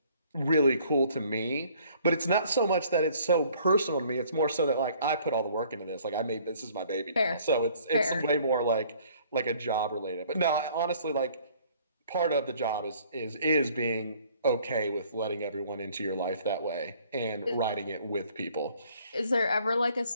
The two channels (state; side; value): inverted; both; correlation -0.58